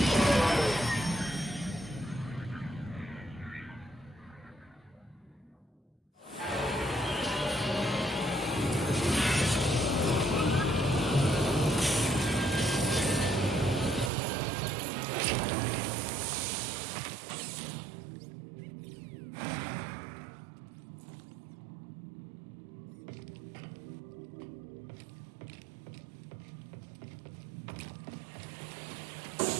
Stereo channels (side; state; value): left; drops out; at 14.1 s